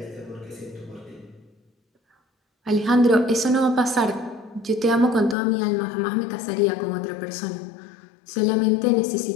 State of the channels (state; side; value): drops out; right; at 5.4 s